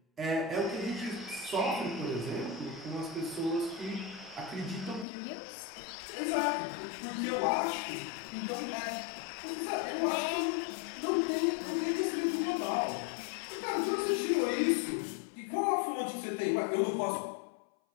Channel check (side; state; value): right; drops out; at 5.1 s